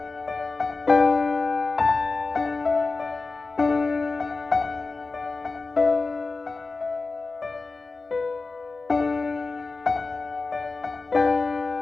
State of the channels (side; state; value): right; quieter; 3.8 dB